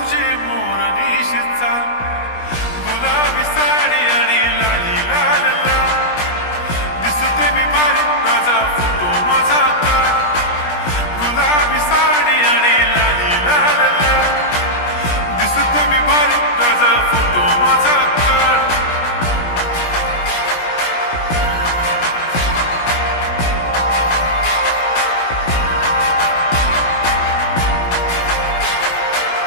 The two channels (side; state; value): right; late; 17 ms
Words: मोरनीशी चाल. गुलाबी साडी आणि लाली लाल लाल, दिसते मी भारी राजा फोटो माझा काढ. गुलाबी साडी आणि लाली लाल लाल, दिसते मी भारी राजा फोटो माझा काढ.